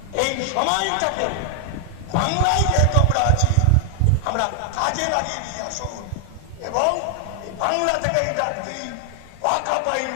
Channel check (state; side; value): different; both; correlation 0.00